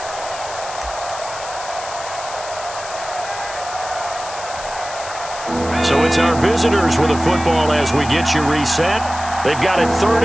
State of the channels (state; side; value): noise; left; hiss, 12 dB below the sound